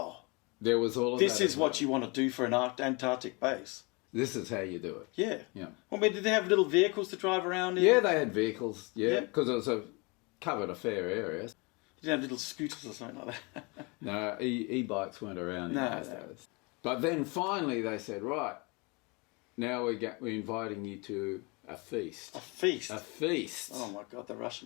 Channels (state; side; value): quieter; right; 28.7 dB